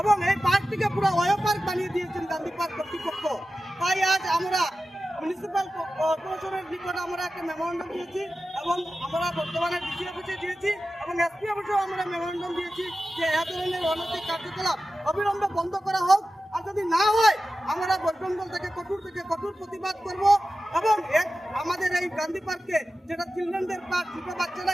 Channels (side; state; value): both; normal; correlation 0.94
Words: এবং এই পার্কটিকে পুরো অয় পার্ক বানিয়ে দিয়েছেন গান্ধী পার্ক কর্তৃপক্ষ। তাই আজ আমরা মিউনিসিপ্যাল কর্পোরেশনের নিকট আমরা একটা মেমোরেন্ডাম দিয়েছি, এবং আমরা বর্তমানে ডিসি অফিসে দিয়েছি এবং এসপি অফিসেও আমরা মেমোরেন্ডাম দিয়েছি যে এ ধরনের অনৈতিক কার্যকলাপ অবিলম্বে বন্ধ করা হোক। আর যদি না হয় আমরা বৈষ্ণব থেকে কঠোর প্রতিবাদ করব, এবং আমাদের এই গান্ধী পার্কে যেটা চিলড্রেনদের পার্ক, ছোট বাচ্চারা